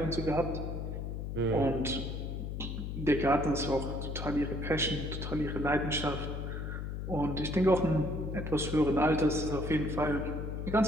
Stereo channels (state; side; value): noise; left; hum, 5 dB below the sound